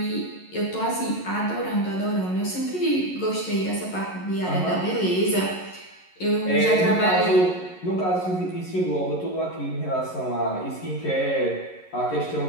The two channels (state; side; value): late; right; 11 ms